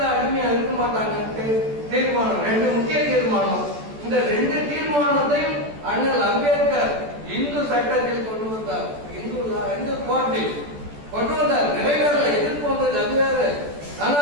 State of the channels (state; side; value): late; left; 14 ms